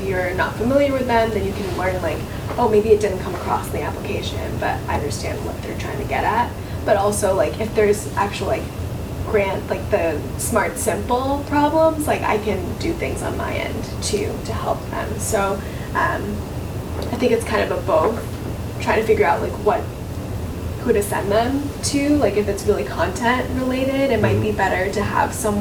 you're not familiar with them, then you can learn like, oh, maybe it didn't come across in the application, but I understand what they're trying to get at. But also like if there's actual like grant, like the smart simple problems, like I can do things on my end to help them. So I think it's kind of a both, trying to figure out like who to send them to. Like if it's really content related, it might be better to have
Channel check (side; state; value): both; identical; correlation 1.00